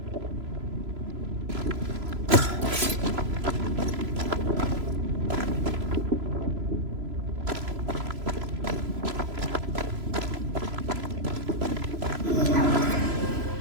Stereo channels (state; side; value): late; left; 3.0 ms